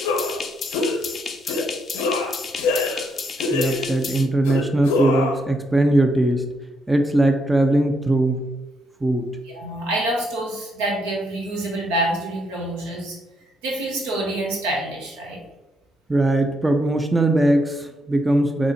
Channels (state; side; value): normal; both; correlation 0.77